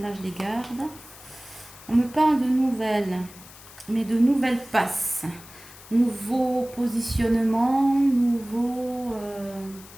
je les garde. On me parle de nouvelles, mais de nouvelles passes. Nouveau positionnement, nouveau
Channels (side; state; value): left; noise; hiss, 19 dB below the sound